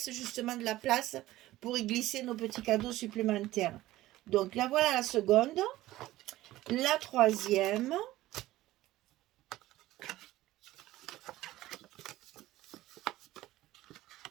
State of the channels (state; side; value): quieter; left; 16.2 dB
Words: justement de la place pour y glisser nos petits cadeaux supplémentaires. Donc là, voilà la seconde. La troisième.